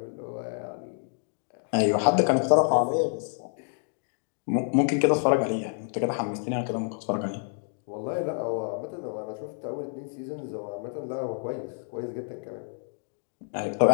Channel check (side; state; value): right; silent; digital silence